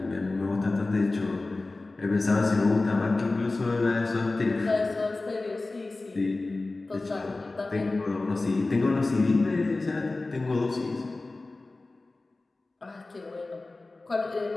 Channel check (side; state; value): right; quieter; 3.2 dB